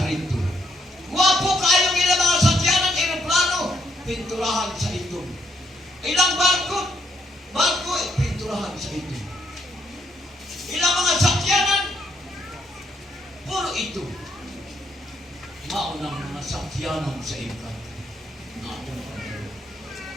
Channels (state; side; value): normal; both; correlation 0.74